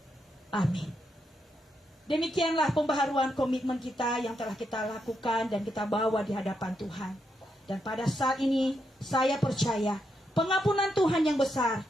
Amin. Demikianlah pembaharuan komitmen kita yang telah kita lakukan dan kita bawa di hadapan Tuhan. Dan pada saat ini saya percaya pengampunan Tuhan yang besar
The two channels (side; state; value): both; normal; correlation 0.81